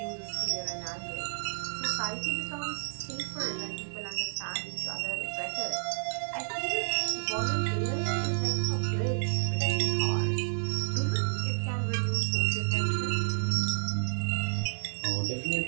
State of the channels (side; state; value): left; silent; digital silence